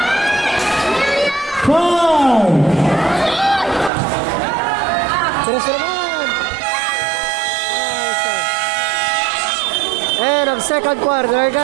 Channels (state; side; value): drops out; left; at 3.9 s